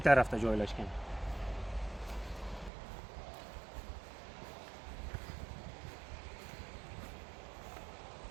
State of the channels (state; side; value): drops out; left; at 2.7 s